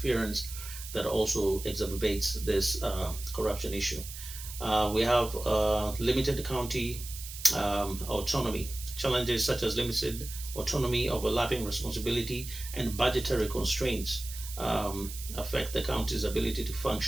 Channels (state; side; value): noise; right; hiss, 11 dB below the sound